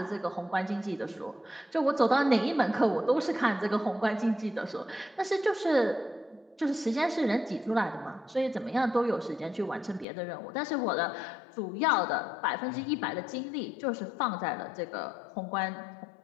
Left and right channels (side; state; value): right; drops out; at 10.1 s